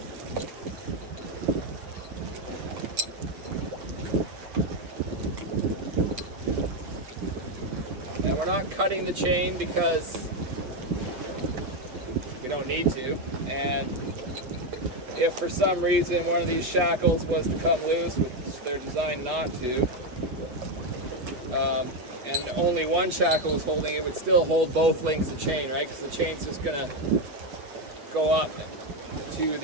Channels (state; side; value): late; left; 8.3 ms